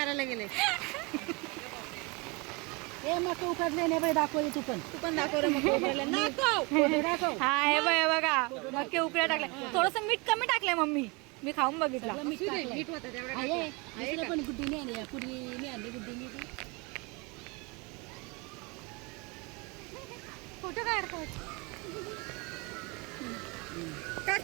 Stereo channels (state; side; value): quieter; left; 28.2 dB